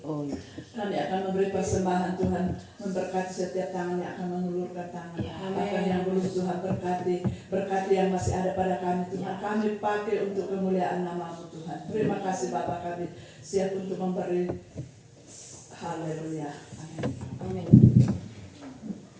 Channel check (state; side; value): identical; both; correlation 1.00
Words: Kami akan memberi persembahan Tuhan, memberkati setiap tangan yang akan mengulurkan tangan. Bahkan yang belum Tuhan berkati yang masih ada pada kami Tuhan. Kami pakai untuk kemuliaan nama-Mu Tuhan. Terima kasih Bapa, kami siap untuk memberi. Haleluya. Amin.